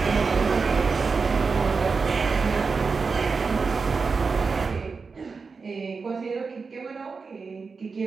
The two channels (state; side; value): quieter; left; 4.8 dB